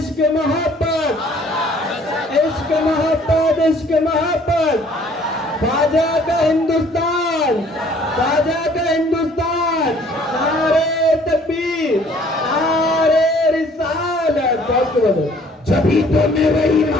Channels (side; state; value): both; normal; correlation 0.57